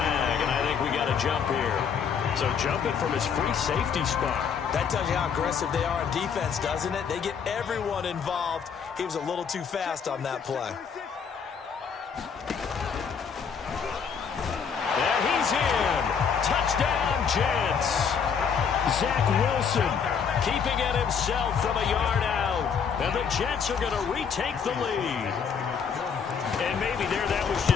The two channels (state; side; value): quieter; right; 6.7 dB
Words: and I think we got a jump here. So jumping from his free safety spot. That tells you how aggressive they are on defense, doesn't it? They get everyone involved. He was a little too fast on that play. And he's in. Touchdown, Jets. Zach Wilson keeping it himself from a yard out. And the Jets are going to retake the lead. And maybe there that was